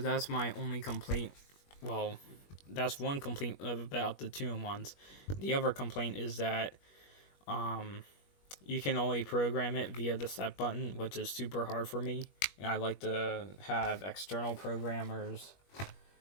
my only complaint. Well, that's one complaint about the 2-in-1s. The other complaint is that you can only program it via the set button, which is super hard for me. And I like to have external programmers.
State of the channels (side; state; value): right; late; 21 ms